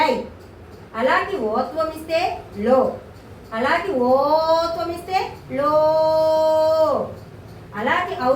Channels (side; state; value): both; identical; correlation 1.00